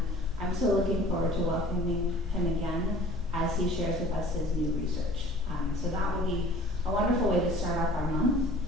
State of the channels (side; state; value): both; normal; correlation 0.48